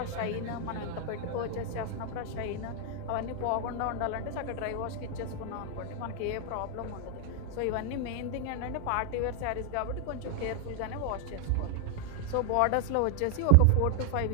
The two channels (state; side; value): different; both; correlation 0.00